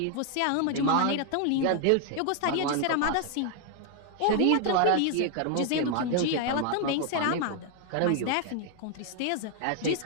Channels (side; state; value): both; different; correlation 0.00